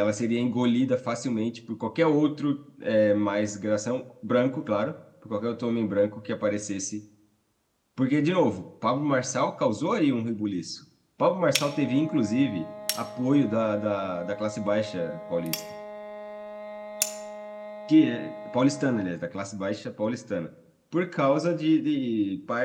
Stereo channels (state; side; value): identical; both; correlation 1.00